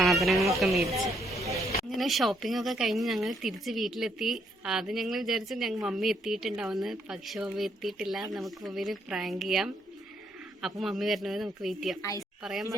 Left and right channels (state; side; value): normal; both; correlation 0.72